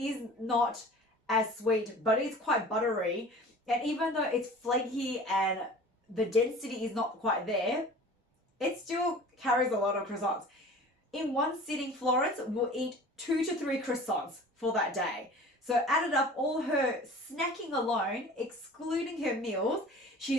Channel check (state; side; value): normal; both; correlation 0.43